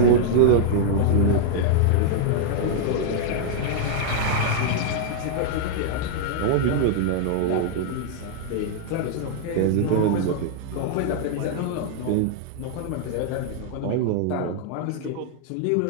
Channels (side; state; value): both; different; correlation -0.01